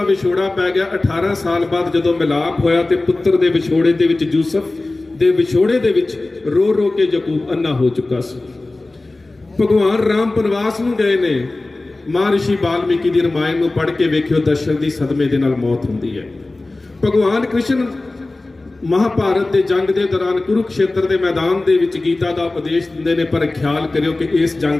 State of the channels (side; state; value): right; quieter; 3.0 dB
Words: विछोड़ा पै गया। 18 साल बाद जदों मिलाप होया ते पुत्र दे विछोड़े दे विच यूसुफ दे विछोड़े दे विच रो रो के याकूब अन्ना हो चुका सी। भगवान राम बनवास नूं गए ने, महर्षि वाल्मीकि दी रामायण नूं पढ़ के वेखियो दशरथ दी सदमे दे नाल मौत हुंदी है। भगवान कृष्ण महाभारत के जंग के दौरान कुरुक्षेत्र के मैदान के विच गीता का उपदेश दिंदे ने, पर ख्याल करियो कि इस